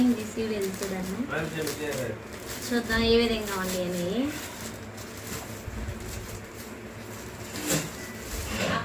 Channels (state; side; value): identical; both; correlation 1.00